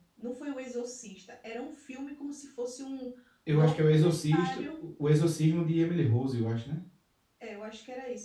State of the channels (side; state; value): both; identical; correlation 1.00